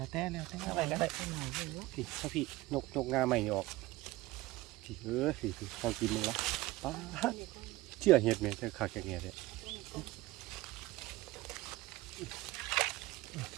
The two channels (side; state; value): left; quieter; 18.9 dB